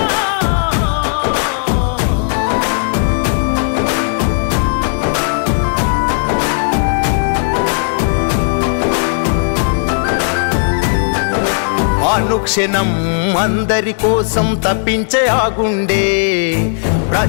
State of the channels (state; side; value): silent; right; digital silence